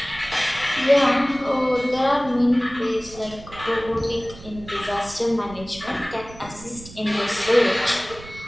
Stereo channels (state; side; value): noise; right; rumble, 18 dB below the sound